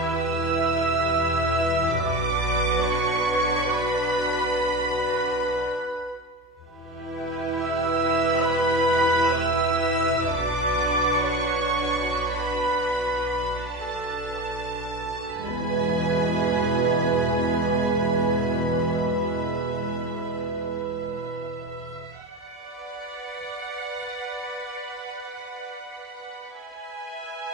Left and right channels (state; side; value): normal; both; correlation 0.25